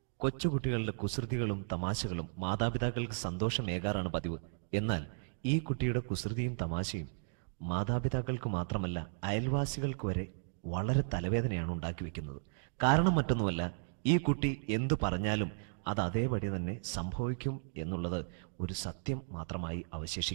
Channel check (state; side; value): silent; left; digital silence